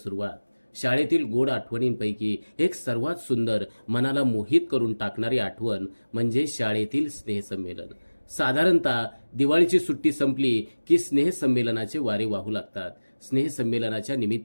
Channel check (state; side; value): inverted; both; correlation -1.00